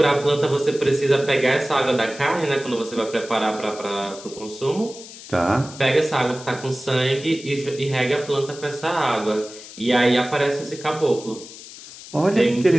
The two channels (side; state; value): left; noise; hiss, 16 dB below the sound